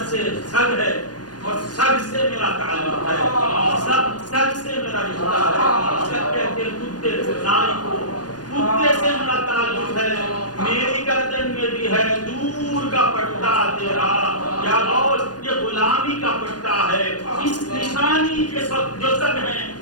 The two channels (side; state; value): right; late; 0.69 ms